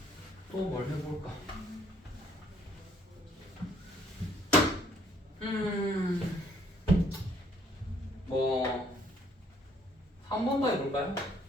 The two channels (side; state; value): both; normal; correlation 0.64